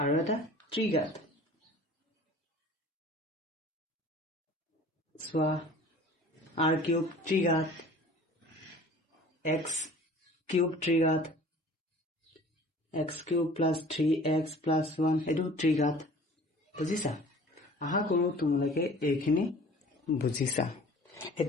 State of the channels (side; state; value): both; normal; correlation 0.47